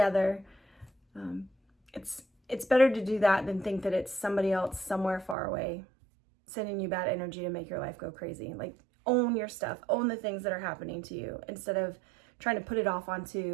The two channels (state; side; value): drops out; left; at 5.4 s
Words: It's better to do that than think that it's somebody else somewhere far away sending you bad energy to make your life go crazy. Like, own your stuff, own the things that are happening to you, instead of trying to put it off